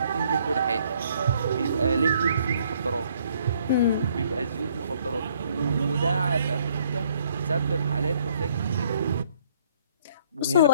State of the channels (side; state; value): both; inverted; correlation -0.64